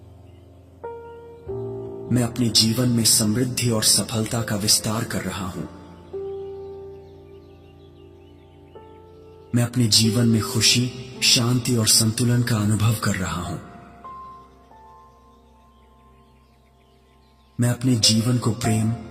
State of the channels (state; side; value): identical; both; correlation 1.00